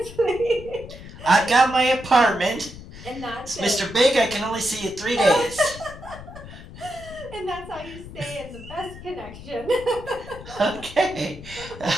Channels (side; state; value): left; noise; rumble, 15 dB below the sound